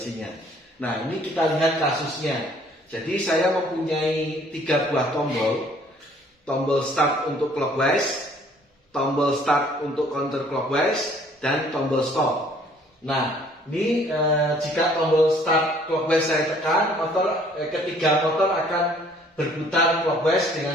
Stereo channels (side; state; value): both; normal; correlation 0.58